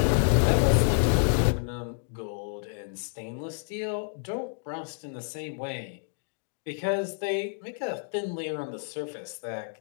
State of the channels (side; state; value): right; silent; digital silence